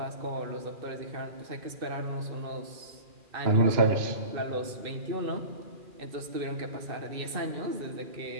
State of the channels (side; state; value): left; late; 2.6 ms